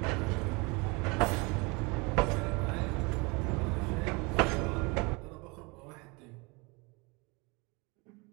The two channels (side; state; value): left; quieter; 27.7 dB